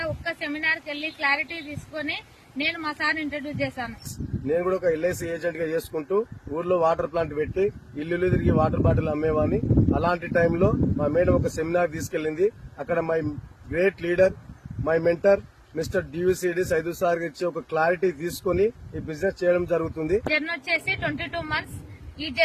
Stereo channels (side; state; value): both; identical; correlation 1.00